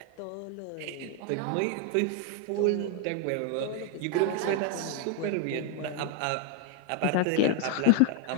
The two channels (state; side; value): different; both; correlation 0.01